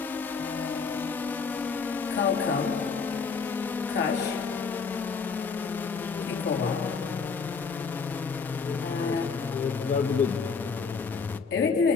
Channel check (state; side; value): quieter; right; 5.2 dB